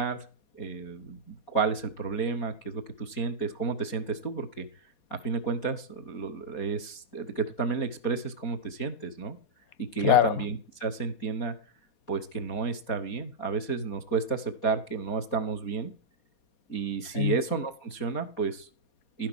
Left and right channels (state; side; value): late; right; 4.2 ms